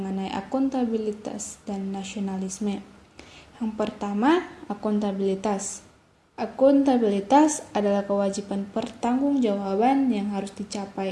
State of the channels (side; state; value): both; identical; correlation 1.00